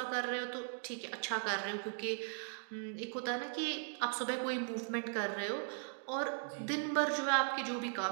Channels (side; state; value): left; silent; 52 dB below the other